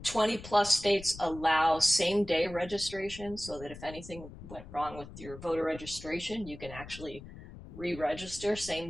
20 plus states allow same day registration so that if anything went wrong with your voter registration, you can actually re register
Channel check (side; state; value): left; noise; rumble, 15 dB below the sound